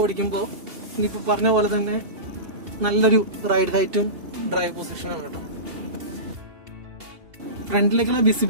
ഓടിക്കുമ്പോൾ ഇനിയിപ്പോ പറഞ്ഞ പോലെ തന്നെ നല്ലൊരു റൈഡ് ഹൈറ്റും ഡ്രൈവ് പൊസിഷനാണ് കേട്ടോ. ഫ്രണ്ടിലേക്കുള്ള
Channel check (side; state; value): left; late; 2.8 ms